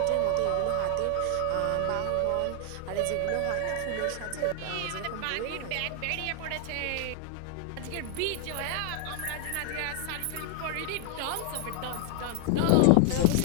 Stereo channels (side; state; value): both; different; correlation 0.00